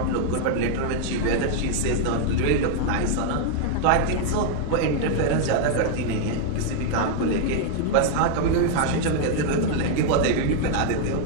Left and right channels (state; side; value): different; both; correlation 0.00